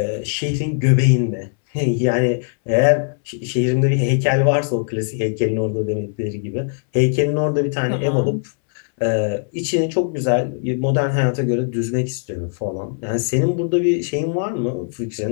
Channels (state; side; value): silent; right; 66 dB below the other